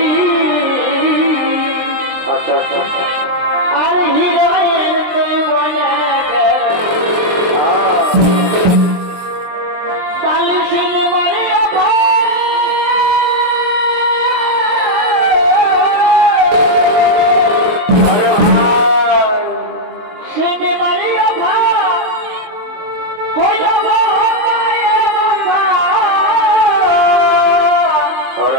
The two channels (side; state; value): left; late; 23 ms